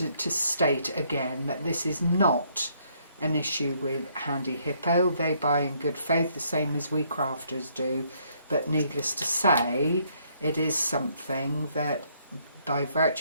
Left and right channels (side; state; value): both; inverted; correlation -0.69